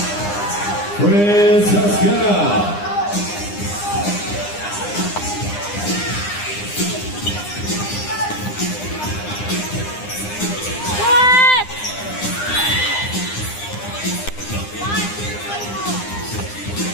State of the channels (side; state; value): right; late; 9.8 ms